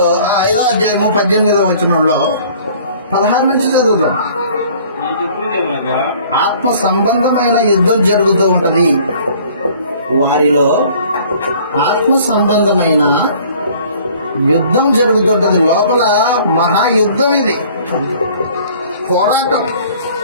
5వ అధ్యాయము 18వ వచనంలో 16 నుంచి చదువుతాం. ఆత్మ సంబంధమైన యుద్ధం జరుగుతూ ఉంటది. వారిలో ఆత్మ సంబంధమైన యుద్ధం జరుగుతుంటది. లోపల మహాయుద్ధం ఇది, పోరాటం.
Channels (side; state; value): both; inverted; correlation -0.53